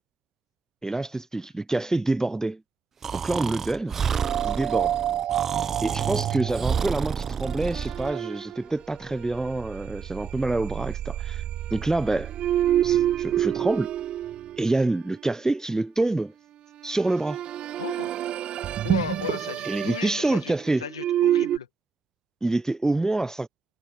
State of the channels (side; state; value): left; quieter; 4.5 dB